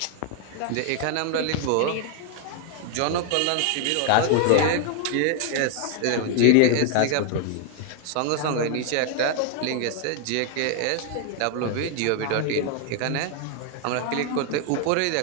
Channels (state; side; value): different; both; correlation 0.00